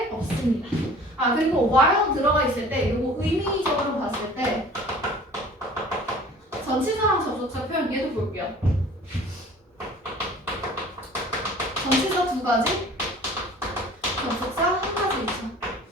없습니다. 아, 그리고 while 들어가 있을 때 이거 의미적으로 봤을 때 전치사랑 접속사 표현 얘도 볼게요. 전치사 2가지, 접속사 1가지 있죠.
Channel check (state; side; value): normal; both; correlation 0.47